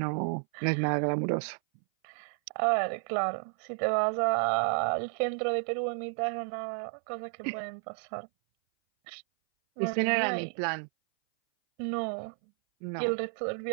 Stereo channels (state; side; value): silent; left; 57 dB below the other